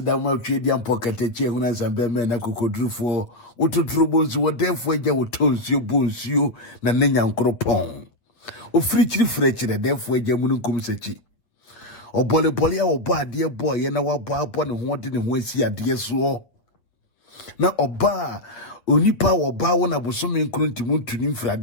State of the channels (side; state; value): right; late; 8.5 ms